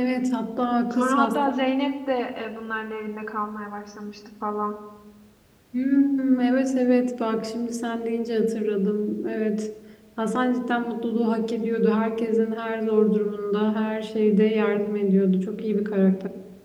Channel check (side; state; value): both; identical; correlation 1.00